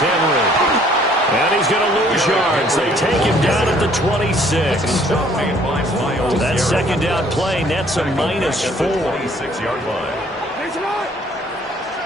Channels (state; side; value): normal; both; correlation 0.60